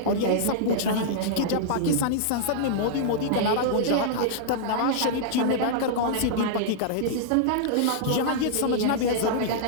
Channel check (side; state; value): both; different; correlation -0.02